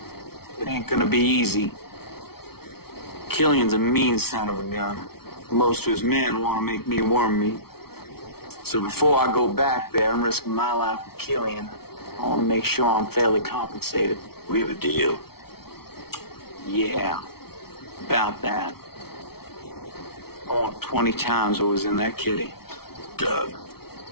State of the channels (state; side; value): late; right; 0.95 ms